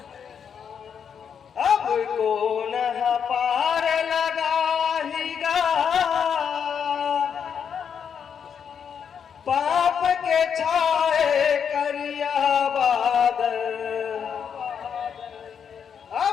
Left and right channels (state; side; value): quieter; right; 7.4 dB